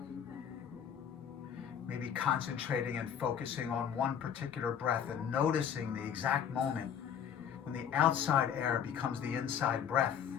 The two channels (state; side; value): quieter; right; 8.4 dB